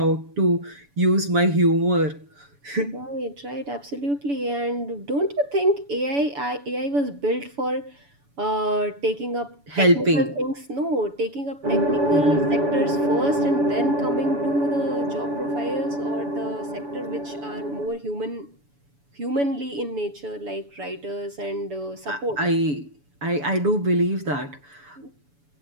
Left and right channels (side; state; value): left; late; 7.0 ms